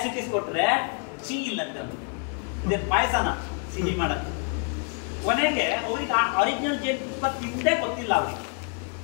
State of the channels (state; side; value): quieter; right; 38.9 dB